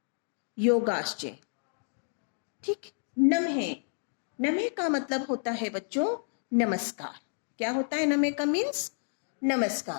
योगाश्च, ठीक। नमः का मतलब होता है बच्चों नमस्कार। क्या होता है नमः का मीन्स,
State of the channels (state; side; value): silent; right; digital silence